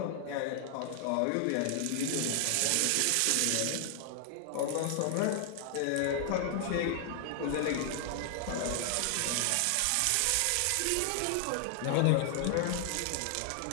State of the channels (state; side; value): different; both; correlation 0.00